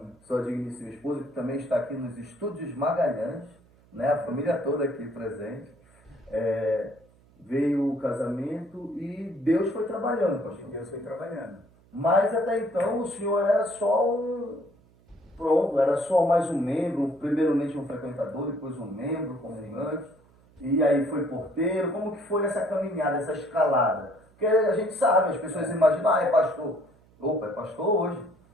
sua digníssima esposa, que também está aqui nos Estúdios Magalhães, né, a família toda aqui presente. Veio o casamento e Deus foi trabalhando, pastor. Deus foi trabalhando. Mas até então o senhor era só pronto, era só mais um membro, primeiramente um frequentador, depois um membro, comunhante, e aí foi porteiro. Como que foi essa caminhada, essa escalada? Porque a gente sabe, as pessoas imaginam, é pastor. Opa, é pastor hoje.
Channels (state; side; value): noise; right; hum, 29 dB below the sound